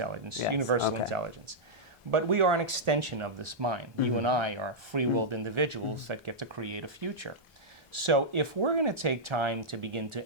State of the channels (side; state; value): both; normal; correlation -0.09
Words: Yes, universal okay. intelligence. But we are an extension of this mind. You and I are free-willed individuals that get to create a future. So if we're going to take time to begin